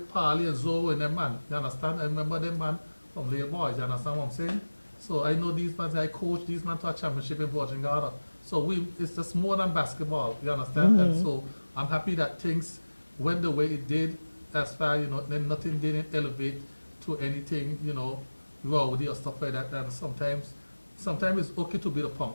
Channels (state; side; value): inverted; both; correlation -1.00